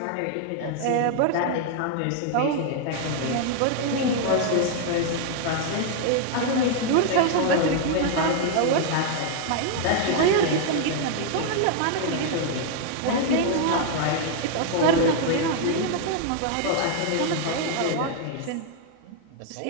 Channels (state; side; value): different; both; correlation 0.00